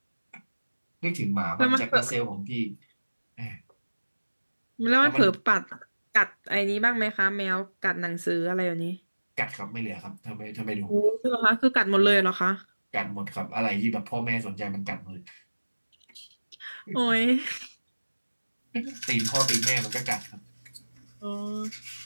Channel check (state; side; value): inverted; both; correlation -1.00